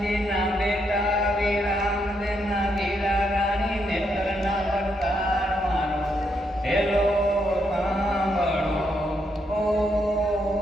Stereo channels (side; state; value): both; normal; correlation 0.78